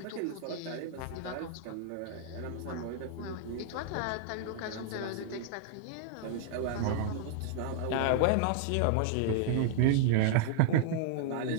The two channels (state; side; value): different; both; correlation -0.01